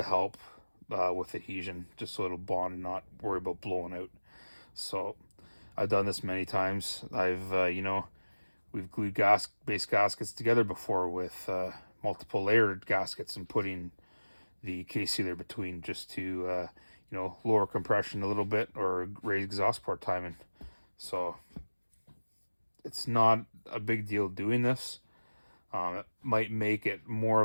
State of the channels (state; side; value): inverted; both; correlation -1.00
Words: help with adhesion, just so it'll bond and not worry about blowing out. So I've done this many times. You know, we've glued base gaskets together before with multiple layered gaskets and putting the case sealer between, just to you know, lower compression a little bit or raise exhaust port timing. So it's not a big deal doing this. It might make it more